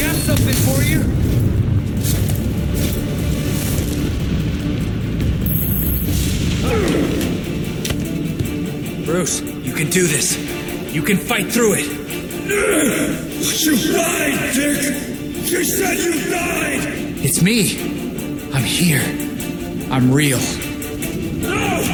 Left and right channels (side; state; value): both; identical; correlation 1.00